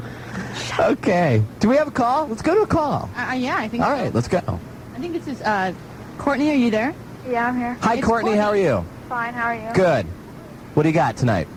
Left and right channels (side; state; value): both; identical; correlation 1.00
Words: Okay. Do we have a call? Let's go to a call. Yeah, I think so. All right, let's go. I think this is, Courtney, are you there? Yeah, I'm here. Hi, Courtney. How are you? Fine, how are you? Good. What do you got tonight?